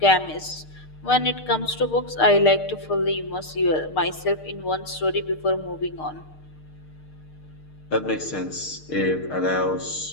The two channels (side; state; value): right; late; 6.6 ms